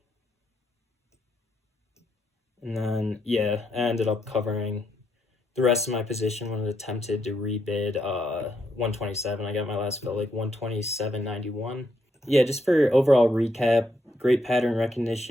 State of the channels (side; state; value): both; normal; correlation 0.78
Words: And then, yeah, I ended up covering the rest of my position when it attempted to rebid 127. I got my last fill like 127.91. Yeah, just for overall recap, great pattern